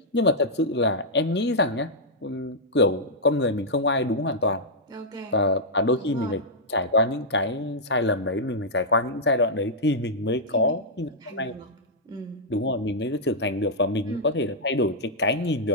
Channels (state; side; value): normal; both; correlation -0.08